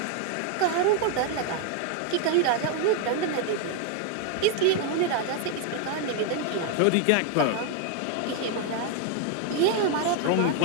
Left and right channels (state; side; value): different; both; correlation 0.01